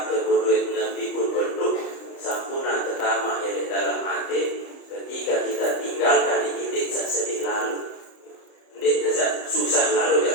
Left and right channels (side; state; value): right; late; 30 ms